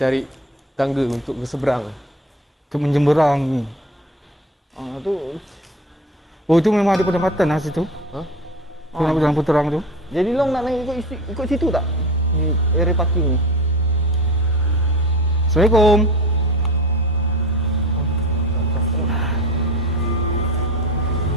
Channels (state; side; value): normal; both; correlation 0.33